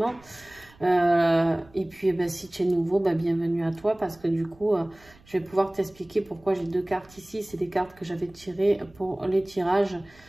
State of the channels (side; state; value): right; noise; rumble, 27 dB below the sound